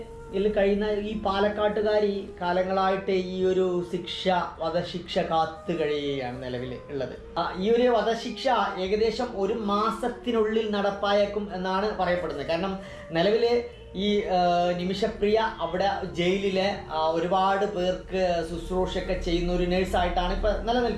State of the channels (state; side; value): identical; both; correlation 1.00